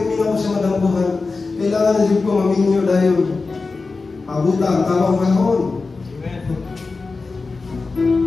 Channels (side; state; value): right; quieter; 4.0 dB